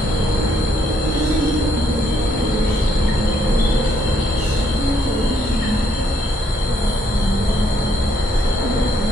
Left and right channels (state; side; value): normal; both; correlation 0.71